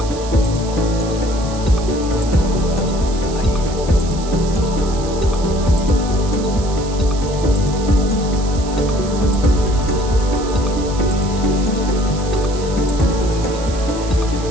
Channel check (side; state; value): right; noise; hiss, 15 dB below the sound